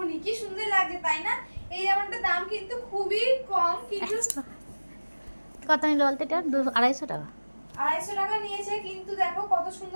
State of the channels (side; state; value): both; inverted; correlation -1.00